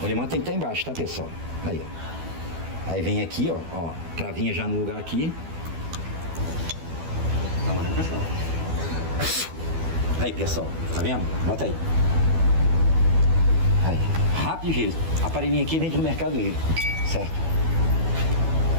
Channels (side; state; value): left; late; 12 ms